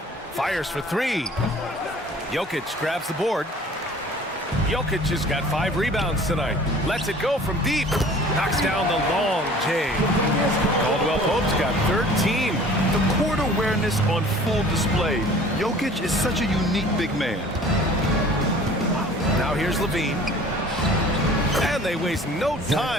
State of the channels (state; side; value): normal; both; correlation 0.48